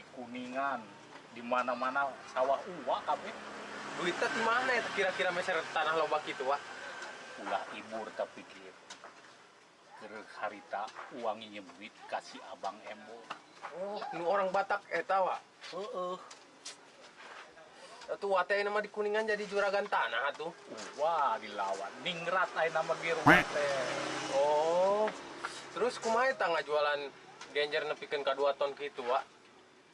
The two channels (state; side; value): identical; both; correlation 1.00